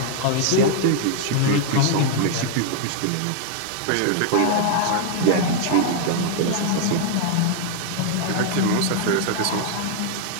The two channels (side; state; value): both; different; correlation 0.00